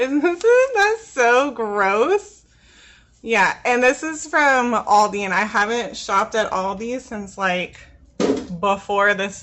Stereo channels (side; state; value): both; identical; correlation 1.00